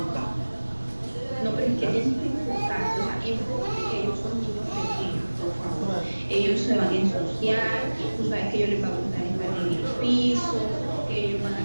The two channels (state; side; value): inverted; both; correlation -1.00